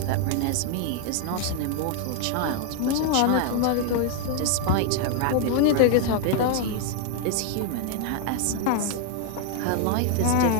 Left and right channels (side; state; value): both; different; correlation 0.00